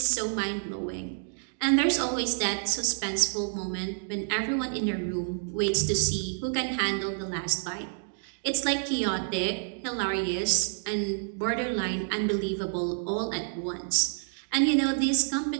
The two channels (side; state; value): left; silent; digital silence